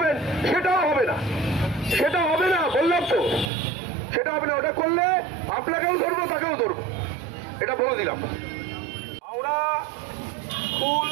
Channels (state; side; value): drops out; left; at 3.5 s